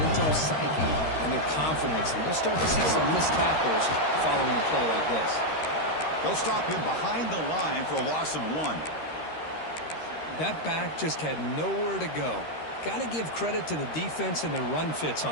psyche and their confidence. And you'll start to see some missed tackles following a play like this. They'll stop him behind the line for a loss of 1. That back just had nowhere to go. Got to give credit to the defense and their run fits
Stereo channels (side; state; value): right; late; 13 ms